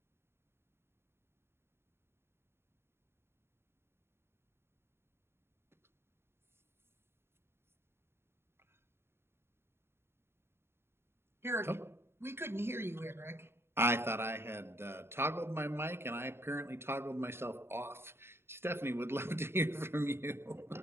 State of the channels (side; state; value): left; late; 0.12 ms